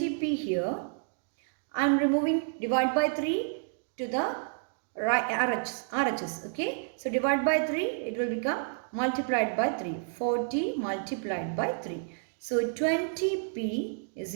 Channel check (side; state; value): left; silent; digital silence